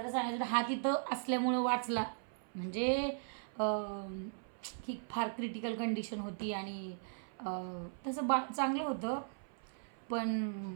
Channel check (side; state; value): left; silent; 52 dB below the other